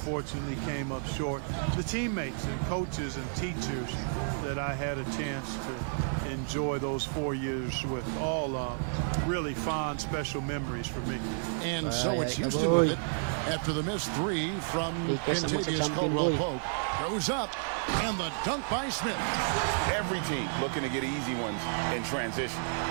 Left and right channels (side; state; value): left; silent; digital silence